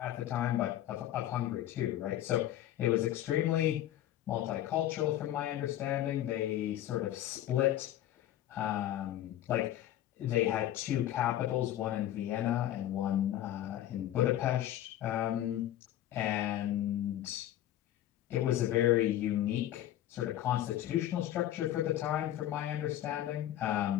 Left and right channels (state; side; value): quieter; right; 12.8 dB